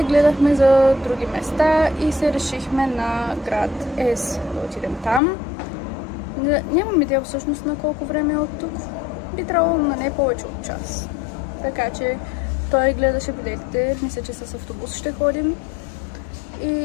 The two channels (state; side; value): drops out; right; at 5.2 s